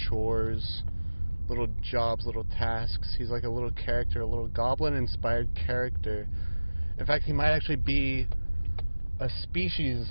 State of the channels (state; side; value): inverted; both; correlation -1.00